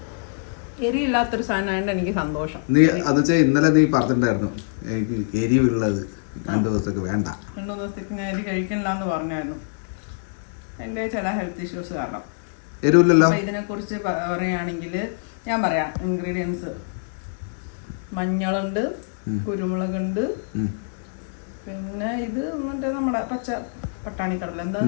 എരിയില്ലാത്തൊരു സാധനമായിട്ട് എനിക്ക് സന്തോഷം. നീ അത് വെച്ചാൽ ഇന്നലെ നീ പറഞ്ഞിട്ടുണ്ടായിരുന്നു എനിക്ക് എരിവുള്ളത് 2 ദിവസത്തേക്ക് വേണ്ട. 2 ദിവസത്തേക്ക് ഞാൻ എരി കഴിക്കണില്ല എന്ന് പറഞ്ഞായിരുന്നു. എൻ്റെ ചില ഹെൽത്ത് ഇഷ്യൂസ് കാരണം. എരിവില്ലല്ലോ. ഇതിനെ കുറിച്ച് പറയുകയാണെങ്കിൽ ഞാൻ പറയാം. ഇൻഗ്രീഡിയൻസ്: മഞ്ഞളുണ്ട്, കുരുമുളകുണ്ട്, പിന്നെ ഇത് മറ്റേ നമ്മുടെ പച്ച പട്ടാണി കടല,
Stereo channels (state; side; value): silent; right; digital silence